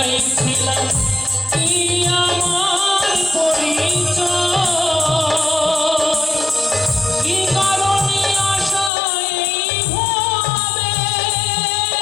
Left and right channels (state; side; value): drops out; right; at 8.9 s